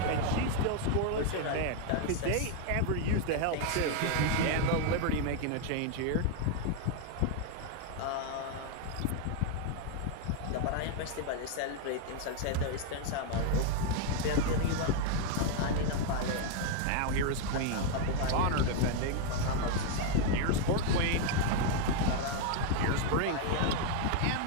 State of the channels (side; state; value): both; different; correlation 0.00